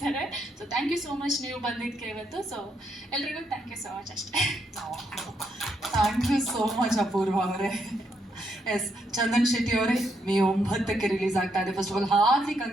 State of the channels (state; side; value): normal; both; correlation 0.77